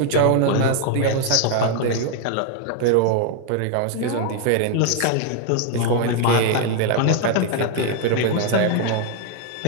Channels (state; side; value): different; both; correlation 0.00